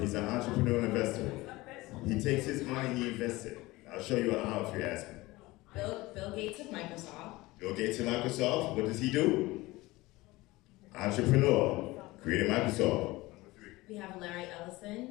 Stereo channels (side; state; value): right; quieter; 20.2 dB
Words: an entrepreneur and investor. He takes his money, he invests it. I'll show you how if you ask me. Bill Gates of Microsoft. Bill Gates of Microsoft, what does he do? Entrepreneur, created Microsoft. We have Larry